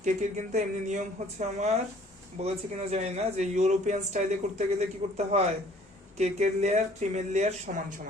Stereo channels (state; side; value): normal; both; correlation 0.56